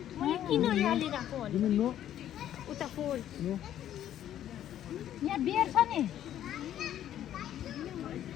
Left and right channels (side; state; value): right; quieter; 11.3 dB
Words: मैले किन यहाँले राखो भने उता फोर यहाँ बियर छ नि